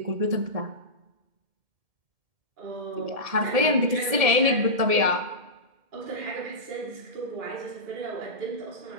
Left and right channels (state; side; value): late; left; 1.7 ms